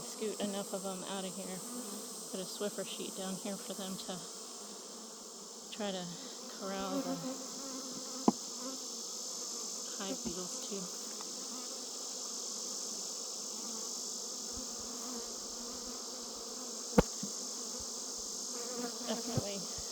enough of them out of here, put a Swiffer sheet down here for them to try to corral the hive beetles too. Definitely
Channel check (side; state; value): both; identical; correlation 1.00